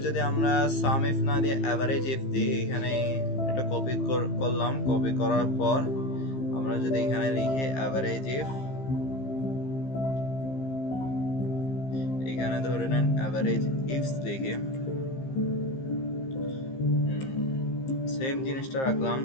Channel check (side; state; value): right; late; 15 ms